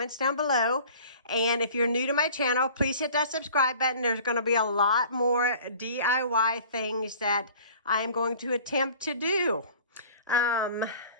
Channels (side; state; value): both; inverted; correlation -0.46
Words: down below. And if you're new to my channel, please hit that subscribe button. There's going to be a lot more DIY things that I'm going to attempt to do.